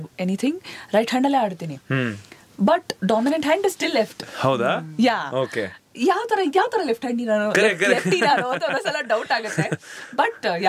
ಎನಿಥಿಂಗ್ ರೈಟ್ ಹ್ಯಾಂಡ್ ಅಲ್ಲೇ ಆಡ್ತೀನಿ, but dominant hand is still left. ಹೌದಾ? ಯಾ. ಓಕೆ. ಯಾವ ತರ ಲೆಫ್ಟ್ ಹ್ಯಾಂಡ್ ಅಂತ ಒಂದೊಂದ್ಸಲ ಡೌಟ್ ಆಗುತ್ತೆ. But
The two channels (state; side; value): identical; both; correlation 1.00